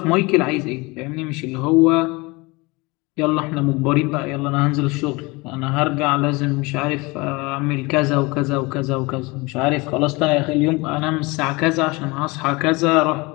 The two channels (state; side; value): quieter; right; 24.8 dB